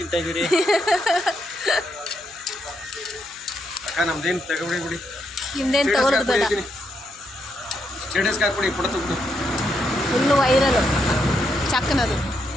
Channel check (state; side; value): noise; right; hum, 28 dB below the sound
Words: ಇದ್ದೀರಿ ಅಕ್ಕ? ನಮ್ದೇನು ತಗೊಬಿಡಿ ಬಿಡಿ, ಹಿಂದೇನು ತಗೊಳ್ಳೋದು ಬೇಡ. ಸ್ಟೇಟಸ್ಗೆ ಹಾಕ್ಬಿಡಿ, ಫೋಟೋ ತಗೊಬಿಡಿ. ಫುಲ್ಲು ವೈರಲ್ ಚಾಕ್ನದು.